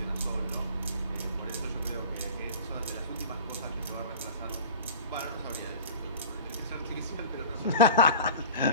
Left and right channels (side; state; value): both; inverted; correlation -0.37